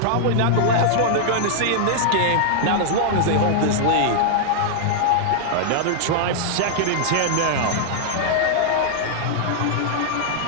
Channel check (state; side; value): different; both; correlation -0.01